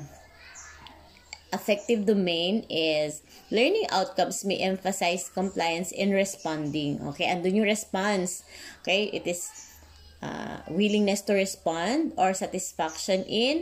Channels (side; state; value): both; identical; correlation 1.00